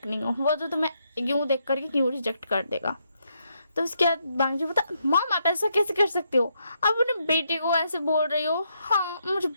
नहीं हो, वो तो तुम्हें यूं देख करके क्यों रिजेक्ट कर देगा। तो उसके बाद बांगजी बता, मॉम आप ऐसा कैसे कर सकते हो, आप अपने बेटे को ऐसे बोल रही हो, हाँ मुझे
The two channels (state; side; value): inverted; both; correlation -0.78